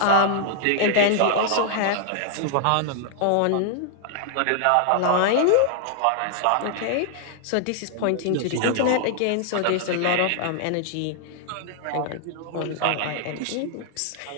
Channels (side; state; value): both; different; correlation 0.00